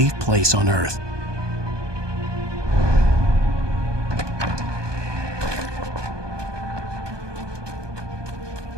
place on Earth.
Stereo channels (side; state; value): left; late; 1.2 ms